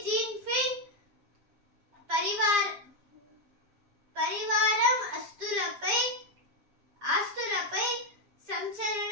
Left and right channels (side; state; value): left; late; 7.4 ms